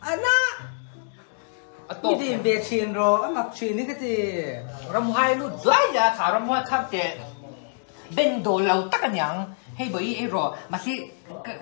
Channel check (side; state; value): right; silent; digital silence